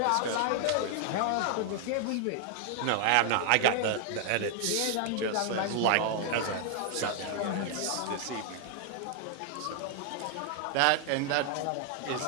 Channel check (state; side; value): different; both; correlation 0.00